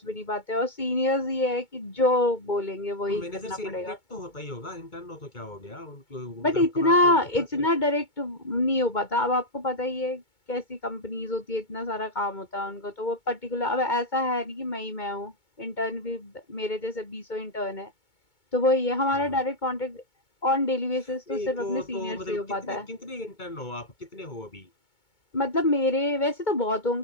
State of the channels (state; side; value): late; right; 2.2 ms